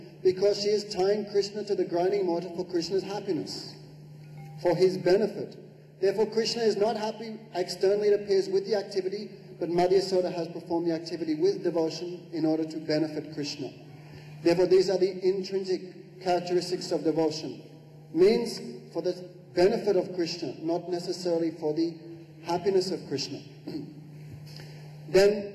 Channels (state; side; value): identical; both; correlation 1.00